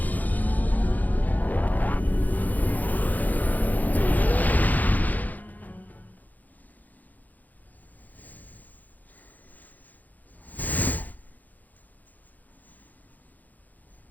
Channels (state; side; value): late; right; 0.082 ms